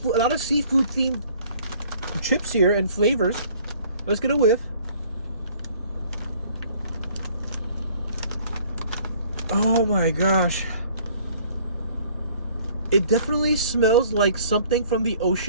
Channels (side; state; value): both; inverted; correlation -0.55